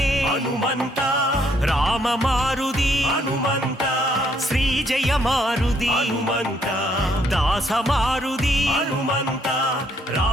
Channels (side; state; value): both; normal; correlation 0.69